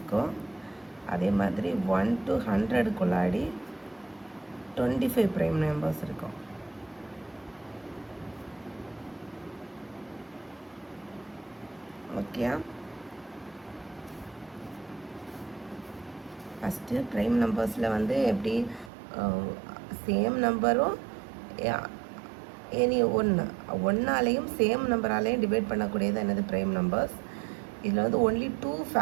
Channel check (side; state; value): left; drops out; at 18.9 s